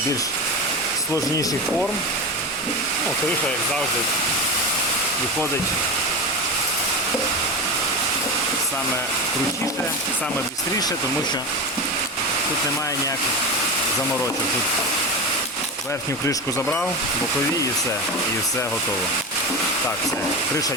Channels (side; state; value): both; normal; correlation 0.22